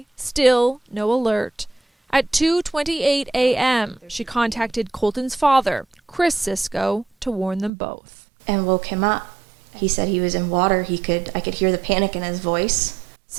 still no alert. At 2:28 a.m., she contacted Colton's father, Chris Cisco, to warn them both. And woke him up. He said he was in water. I could hear the panic in his voice.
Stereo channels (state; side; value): drops out; left; at 7.7 s